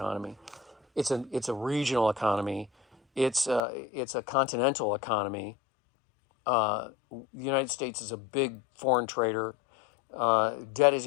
It's a regional economy. It's a continental economy. The United States is a big foreign trader. Debt is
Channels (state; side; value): drops out; right; at 3.6 s